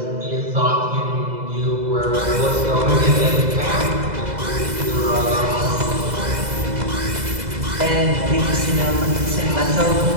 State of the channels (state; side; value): late; left; 2.0 ms